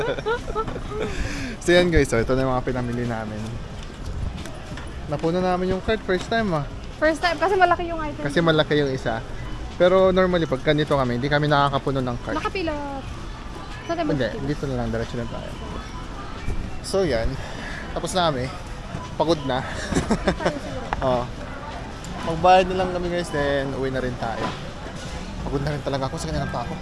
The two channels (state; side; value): identical; both; correlation 1.00